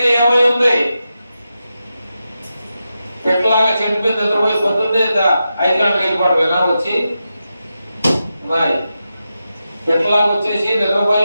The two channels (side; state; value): both; inverted; correlation -0.89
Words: ఏమై ఉంది? పెట్టలాగా చెడిపోయింది నిద్రపోయి పొద్దున్నే 5 గంటలకు వెళ్ళిపోవడం వచ్చి పెట్టలాగా వచ్చేసి నిద్రపోయి